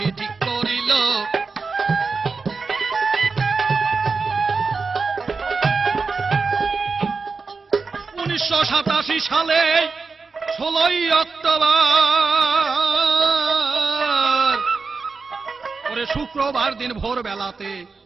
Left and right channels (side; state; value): left; quieter; 4.5 dB